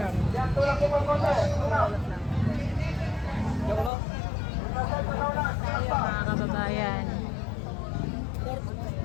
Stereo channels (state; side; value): drops out; right; at 3.9 s